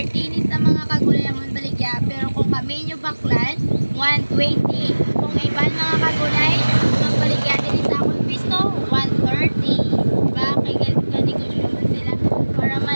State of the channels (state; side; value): inverted; both; correlation -1.00